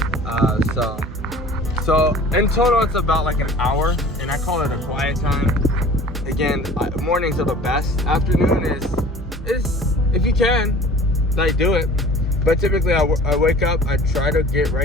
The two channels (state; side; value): noise; right; hum, 13 dB below the sound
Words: So in total it's about like an hour, and I call it a quiet time. Again, mornings are the best. Afternoon is if you can, like, do it. But typically I wake up, I try to get